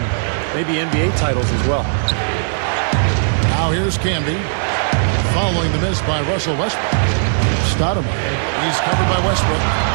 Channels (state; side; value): silent; left; 68 dB below the other